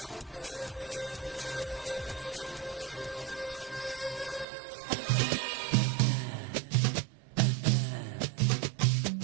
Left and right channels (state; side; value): drops out; left; at 4.5 s